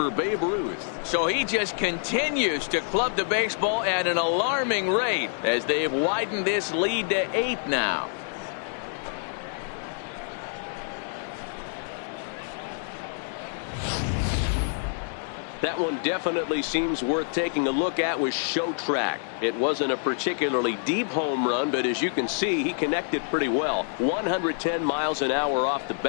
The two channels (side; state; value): right; silent; digital silence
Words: Babe Ruth. So he just continues to club the baseball at an alarming rate as they've widened this lead to 8 now. That one definitely seems worth taking a look at with Show Track. It wasn't a particularly deep home run, but as you can see, he connected pretty well. 110 miles an hour off the